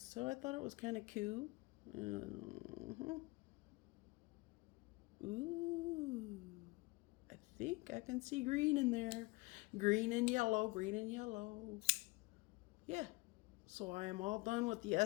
I thought it was kind of cool. Ooh, I think I can see green in there. Green and yellow, green and yellow. Yeah, so I am all done with the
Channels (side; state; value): right; quieter; 23.4 dB